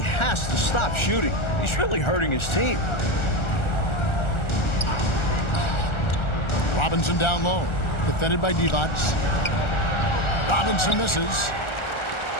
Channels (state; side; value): late; right; 1.4 ms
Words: has to stop shooting. He's really hurting his team. Robinson down low. Defended by Divac. Robinson misses.